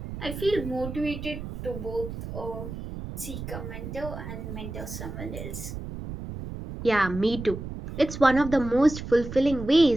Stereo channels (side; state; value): right; noise; rumble, 9 dB below the sound